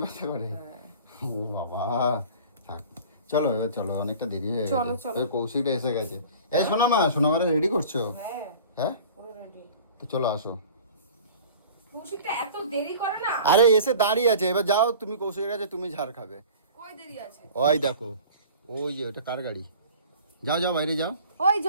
ব্যথা করে? হ্যাঁ। ও বাবা, থাক চলো এবার চলো, অনেকটা দেরি হয়ে চলো, গেছে। চলো। ওই কৌশিকটা এসে গেছে। এই সোনামারে রেডি করছো? হ্যাঁ হ্যাঁ পুরো রেডি। তো চলো আসো। কৌশিকটা এত দেরি করে না। আরে এসে দাঁড়িয়ে আছে, এবার যাও তুমি কৌশিকের কাছে, তুমি ঝাড় খাবে। কই দেরি আছে? ওই দেখো, ওই যে ওটা কার গাড়ি? যাও যাও বাইরে যাও। ওই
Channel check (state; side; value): inverted; both; correlation -0.43